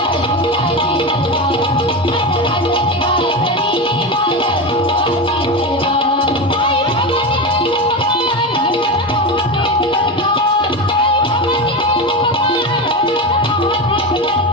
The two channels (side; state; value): both; normal; correlation 0.19